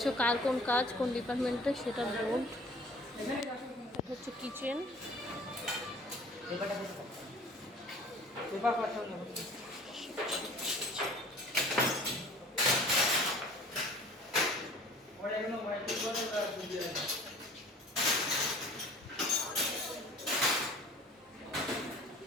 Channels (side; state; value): both; normal; correlation 0.48